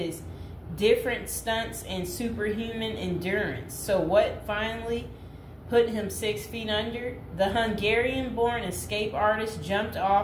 different stunts and superhuman endurance. So what finally put him 6 feet under? The Hungarian-born escape artist jumped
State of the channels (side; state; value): both; identical; correlation 1.00